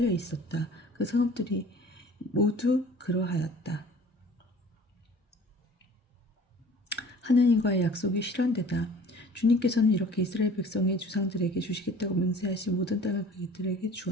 있었다. 그 성읍들이 모두 그러하였다. 하느님과의 약속이 실현되다. 주님께서는 이렇게 이스라엘 백성의 주상들에게 주시겠다고 맹세하신 모든 땅을 그들에게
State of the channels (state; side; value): normal; both; correlation 0.47